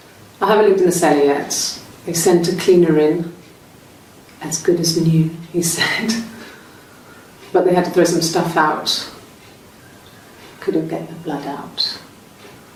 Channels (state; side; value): identical; both; correlation 1.00